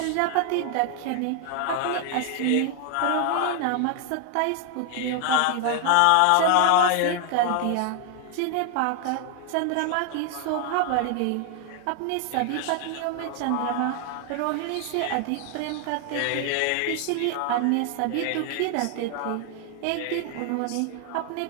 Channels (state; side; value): different; both; correlation 0.00